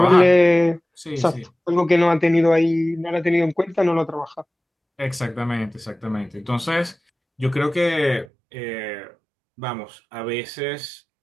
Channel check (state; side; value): drops out; left; at 8.2 s